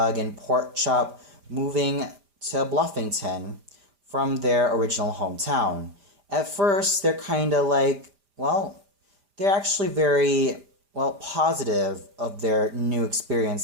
and Porkchop moving to Bluffington from their original hometown. At first, they're kind of like, well, they're actually very, well, positive of their new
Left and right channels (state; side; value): late; left; 5.0 ms